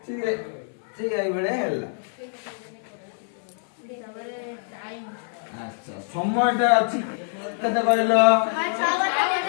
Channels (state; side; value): silent; right; 62 dB below the other